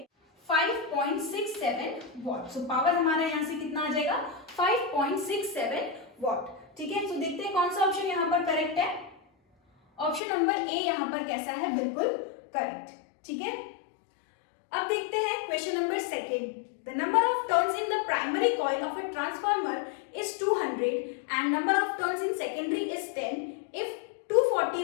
5.67 वॉट। सो पावर हमारा यहाँ से कितना आ जाएगा 5.67 वॉट, ठीक है। तो देखते हैं कौन सा ऑप्शन यहाँ पर करेक्ट है। ऑप्शन नंबर ए यहाँ पर कैसा है, बिल्कुल करेक्ट, ठीक है। अब देखते हैं question number second. The number of turns in the primary coil of a transformer is 200 and number of turns in secondary is 10 if 240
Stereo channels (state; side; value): drops out; right; at 10.2 s